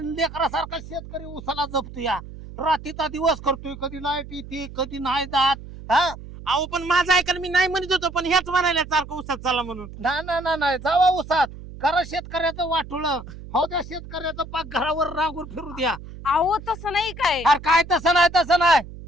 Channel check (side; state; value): right; noise; hum, 14 dB below the sound